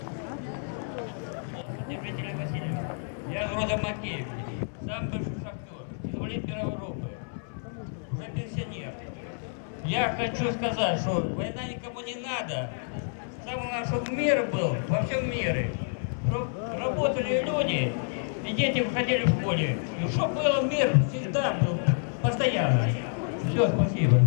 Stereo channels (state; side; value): silent; right; 59 dB below the other